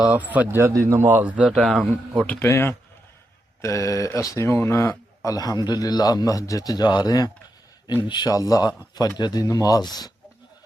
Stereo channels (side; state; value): both; normal; correlation 0.85